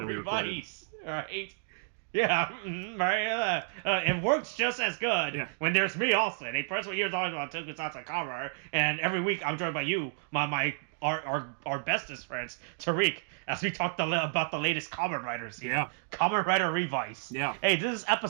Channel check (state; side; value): silent; left; digital silence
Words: Revice, right? Yeah, right. It works just as good when there's me, Austin, a person here talking about tokusatsu cover, and every week I'm joined by you, our bestest friends, Tariq, as we talk about the latest Kamen Riders. Yeah. Kamen Rider Revice. Yeah. Hey, this is